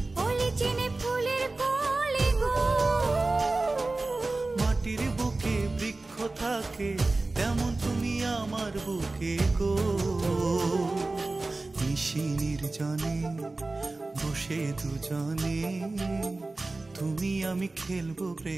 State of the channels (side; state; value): left; quieter; 3.2 dB